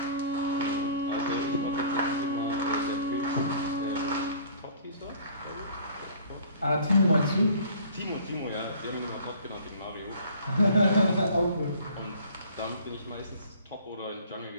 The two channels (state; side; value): inverted; both; correlation -0.50